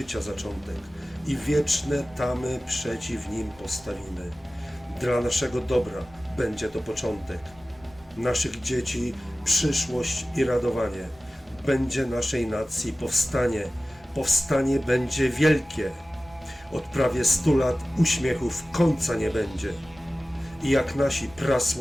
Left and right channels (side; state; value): both; normal; correlation 0.96